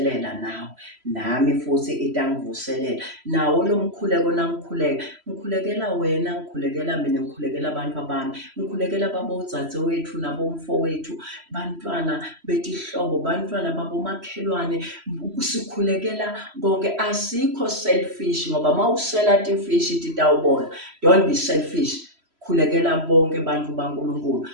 nawe, nami futhi itangivuselela. Nawo lo mkhuleko nangikhuleka, ngikhulekela wena, ngikhulekela mina, ngikhulekela abantu bami, ngikhulekela babodzadzewethu nabomfowethu, bantwana betihlobo, bantwana babomakhelwane, sikhulekela konke. Asikho selfish ngoba mawusela tifishi titawubona. Don't be selfish. Khulekela bonke bantu baNkulunkulu,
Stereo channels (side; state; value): left; late; 3.0 ms